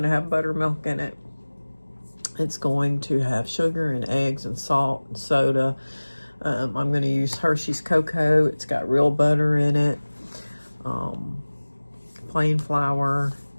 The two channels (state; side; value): inverted; both; correlation -1.00